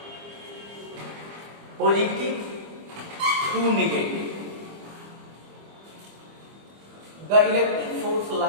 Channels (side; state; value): left; late; 25 ms